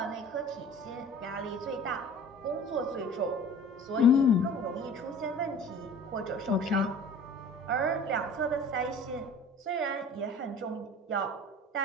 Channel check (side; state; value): both; normal; correlation 0.44